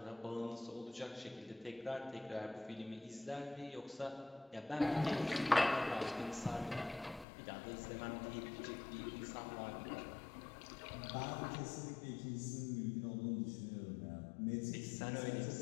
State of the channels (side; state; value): right; drops out; at 7.2 s